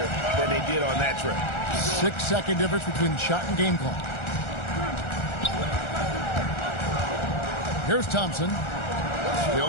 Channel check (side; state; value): right; late; 1.4 ms